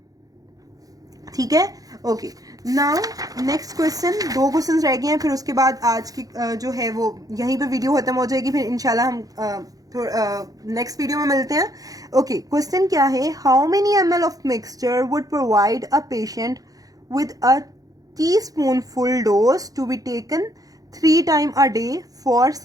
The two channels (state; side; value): late; left; 0.17 ms